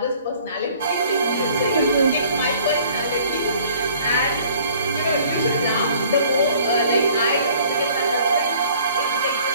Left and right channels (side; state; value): both; inverted; correlation -0.55